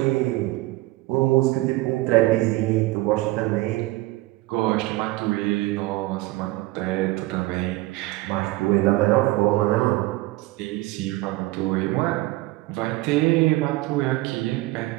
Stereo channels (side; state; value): left; quieter; 19.5 dB